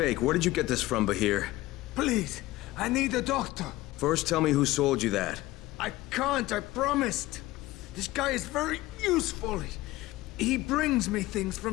Where did you get this from, Bahir? Please, I need a doctor. First, tell me who sold you that. I can't, I promised. This guy is very useful. He brings me things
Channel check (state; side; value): quieter; right; 17.9 dB